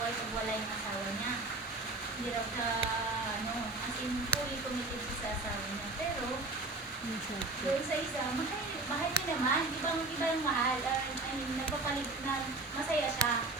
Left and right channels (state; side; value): quieter; left; 3.2 dB